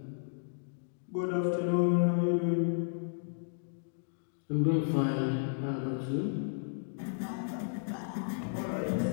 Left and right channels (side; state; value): right; silent; digital silence